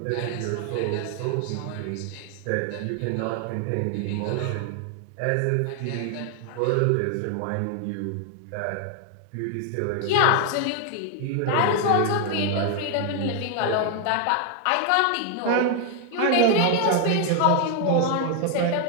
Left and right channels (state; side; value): different; both; correlation 0.00